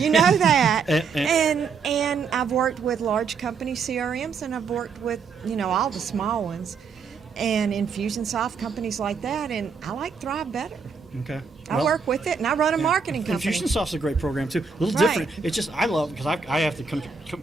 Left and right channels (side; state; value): left; quieter; 5.3 dB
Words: know that. and I've worked with large company CRMs, and I've worked with all the small ones. and Infusionsoft, companies like that, and I like Thrive better. Okay. I work with it, and I run a marketing company. Infusionsoft's a great program too. A little Right. different. It's just I love because I have to